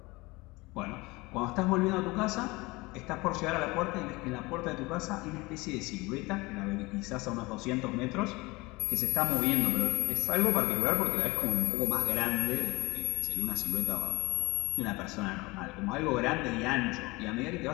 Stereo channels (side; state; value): right; quieter; 23.2 dB